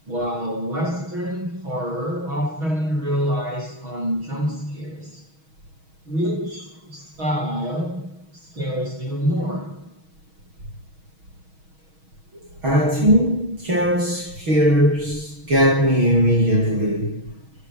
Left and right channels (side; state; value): left; late; 6.3 ms